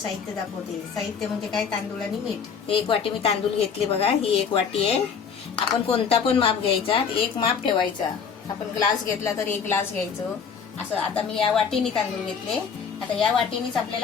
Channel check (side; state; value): right; quieter; 6.4 dB